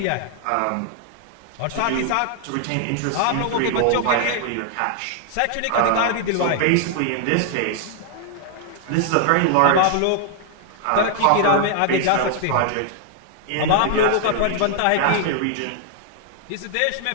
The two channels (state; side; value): different; both; correlation 0.00